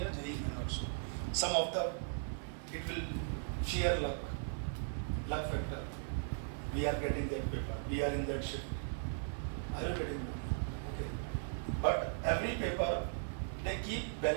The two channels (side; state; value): left; silent; digital silence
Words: JEE Main also. Some of the, it will sheer luck. luck factor. We are getting that paper. We are in that shift. Are you getting that? Okay. But every paper, they keep